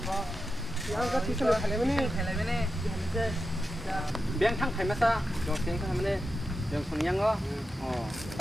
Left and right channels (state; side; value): normal; both; correlation 0.90